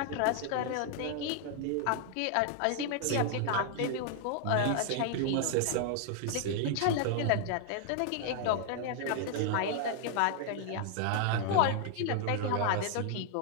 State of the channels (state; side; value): different; both; correlation 0.00